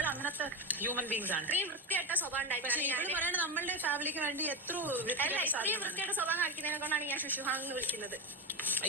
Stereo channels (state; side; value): normal; both; correlation 0.15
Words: അങ്ങനത്തെ ഹ്യൂമൻ ബീങ്സ് ആണ്. വൃത്തിയായിട്ട സ്വഭാവം. പക്ഷെ ഇവര് പറയണ നമ്മളുടെ ഫാമിലിക്ക് വേണ്ടി എത്ര വൃത്തിയായിട്ട സ്വഭാവം കാണിക്കുന്നതിനെ കൊണ്ടാണ് ഞാൻ ശുശുഹാങ് എന്ന് വിളിക്കുന്നത്.